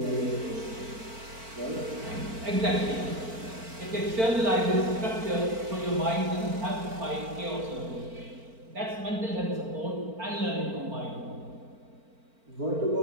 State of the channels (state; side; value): late; left; 4.5 ms